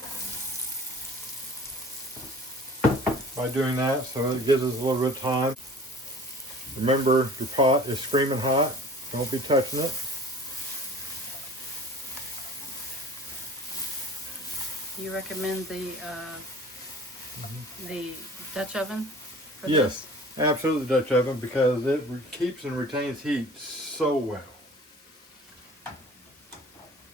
by doing that, so it gives us a little bit of time. Remember, your pot is screaming hot. Don't be touching it. Do you recommend the Dutch oven for Yes, absolutely Dutch oven, because it keeps and retains heat so well.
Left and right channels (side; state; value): both; normal; correlation 0.45